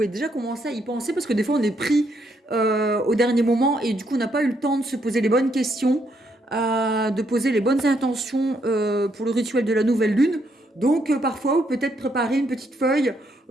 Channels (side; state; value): both; normal; correlation 0.75